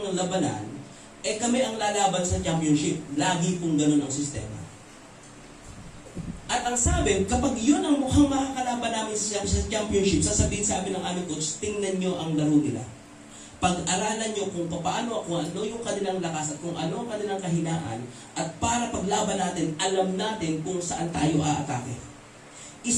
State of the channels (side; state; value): both; identical; correlation 1.00